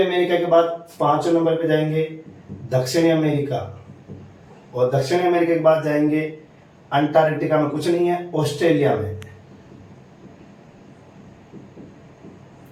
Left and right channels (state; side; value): identical; both; correlation 1.00